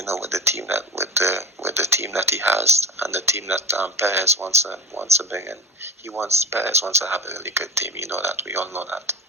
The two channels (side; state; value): both; normal; correlation 0.30